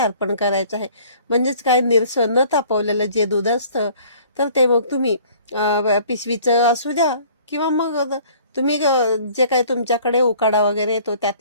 करायचं आहे. म्हणजेच काय, निरसं न तापवलेलं जे दूध असतं तर ते मग तुम्ही पिशवीचं असू द्या किंवा मग तुम्ही जे काही तुमच्याकडे उकाडा वगैरे येतो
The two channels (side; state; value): both; inverted; correlation -0.53